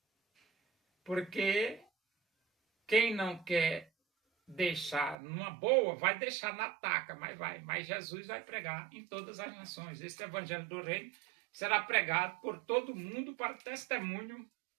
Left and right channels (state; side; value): drops out; left; at 5.2 s